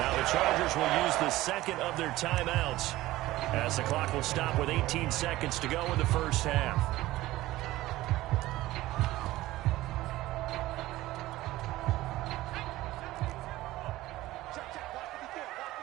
the Chargers will use the second of their timeouts as the clock will stop with 18 seconds to go in the first half.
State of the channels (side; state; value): left; quieter; 17.0 dB